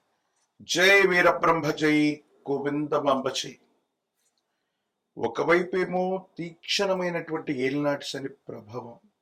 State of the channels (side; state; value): both; identical; correlation 1.00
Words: జై వీరబ్రహ్మ జై గోవిందమాంబ జై. ఒకవైపేమో తీక్షణమైనటువంటి ఏలినాటి శని ప్రభావం,